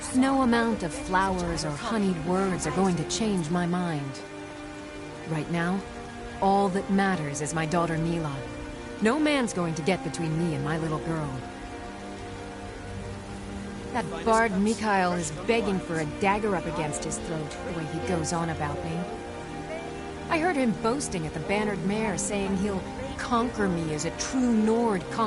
No amount of flowers or honeyed words are going to change my mind. Right now, all that matters is my daughter Mila. No man's going to get between me and my little girl. That bard Mikael is begging for a dagger up against his throat, the way he goes on about me. I heard him boasting at the Bannered Mare, saying he'll conquer me as a true Nord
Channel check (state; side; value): identical; both; correlation 1.00